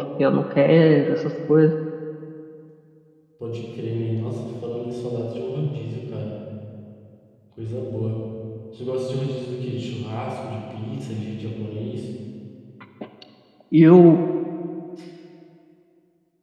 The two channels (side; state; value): both; identical; correlation 1.00